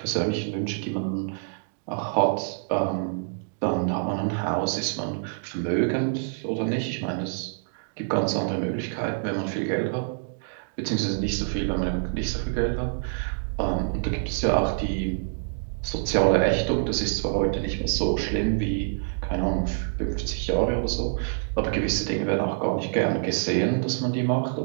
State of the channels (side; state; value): left; silent; digital silence